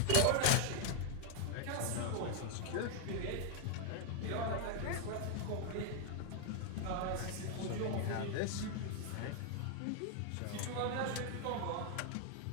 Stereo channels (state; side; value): different; both; correlation 0.00